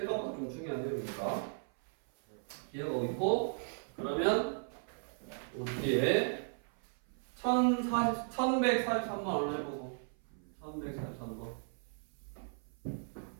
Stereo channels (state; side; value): silent; left; 54 dB below the other